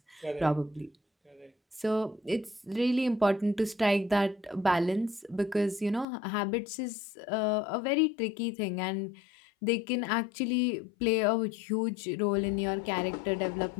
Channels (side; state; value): right; drops out; at 6.1 s